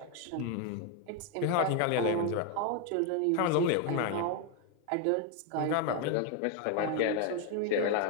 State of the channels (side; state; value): both; different; correlation 0.01